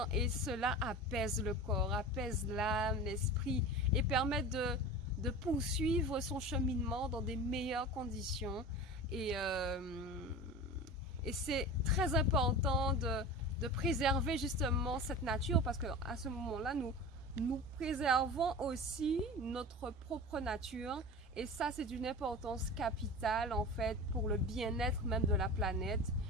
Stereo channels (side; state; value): both; normal; correlation 0.32